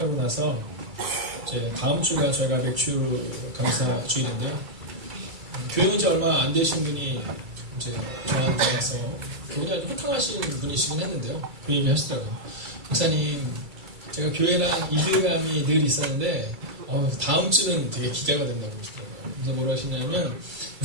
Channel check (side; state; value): left; late; 2.3 ms